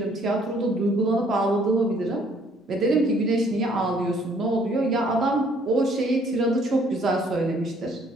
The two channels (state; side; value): normal; both; correlation 0.63